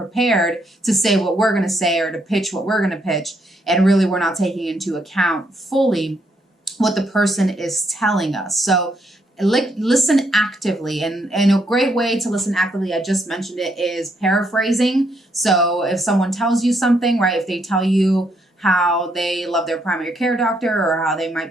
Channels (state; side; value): normal; both; correlation 0.74